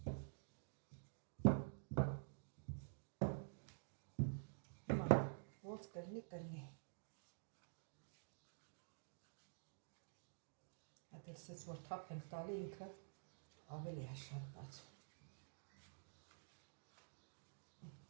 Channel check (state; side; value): silent; left; digital silence